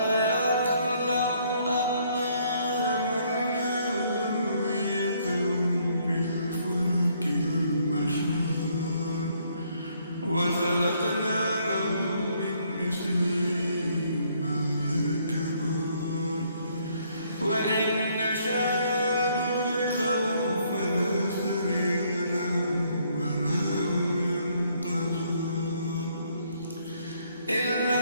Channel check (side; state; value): both; inverted; correlation -0.68